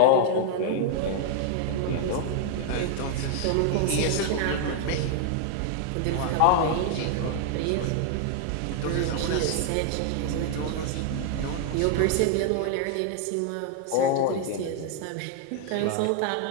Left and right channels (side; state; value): both; different; correlation 0.00